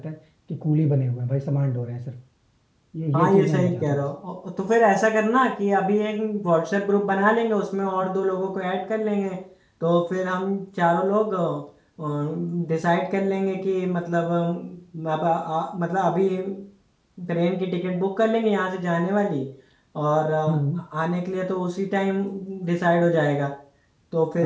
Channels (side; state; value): both; identical; correlation 1.00